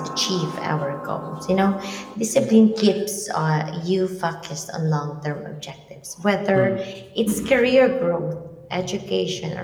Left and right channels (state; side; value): identical; both; correlation 1.00